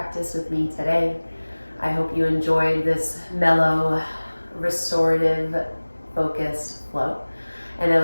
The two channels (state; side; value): inverted; both; correlation -1.00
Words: with me today. I hope you enjoyed this mellow, restorative, focused flow. And I